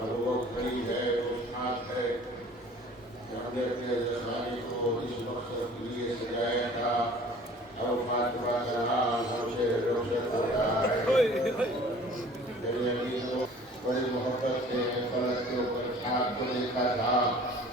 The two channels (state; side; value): normal; both; correlation 0.49